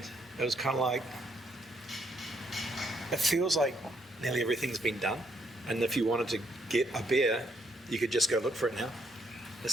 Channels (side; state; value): both; normal; correlation 0.73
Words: it was kind of like. It feels like nearly everything's been done. And if you wanted to get a beer, you could just go look for it now.